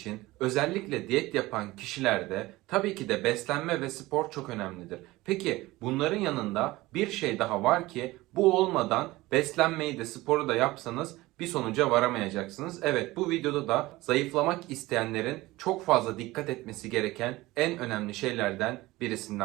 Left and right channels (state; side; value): quieter; left; 19.2 dB